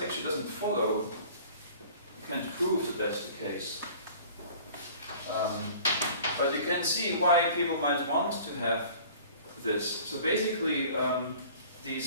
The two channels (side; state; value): both; inverted; correlation -0.47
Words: actually doesn't follow. You can't prove that that's the case. But you can see why people might want to have this. So basically,